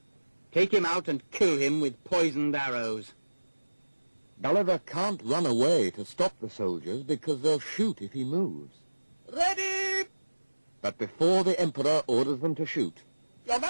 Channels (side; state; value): both; inverted; correlation -1.00